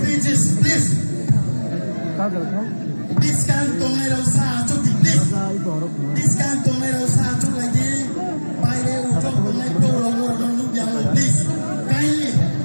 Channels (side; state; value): both; inverted; correlation -1.00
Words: please. This can tongai rasa achok di please. This can tongai rasa achok lagi. Baile uchok tongai pro rogo rogo yang please. Kindly